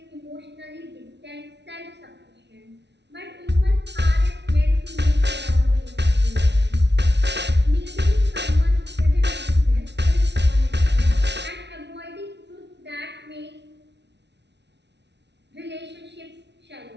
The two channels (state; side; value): late; left; 0.50 ms